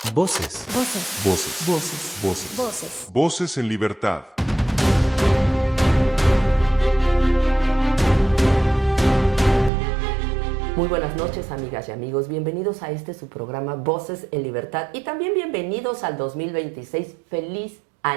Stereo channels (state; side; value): drops out; left; at 9.7 s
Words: Voces. Voces. Voces. Voces. Voces. Voces. Voces en libertad. Muy buenas noches, amigas y amigos. Bienvenidos a su programa Voces en Libertad y también bienvenidos al 2026. ¡Feliz